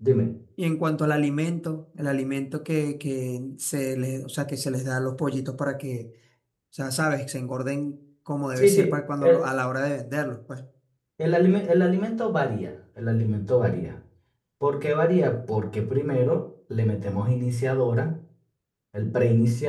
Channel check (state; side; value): identical; both; correlation 1.00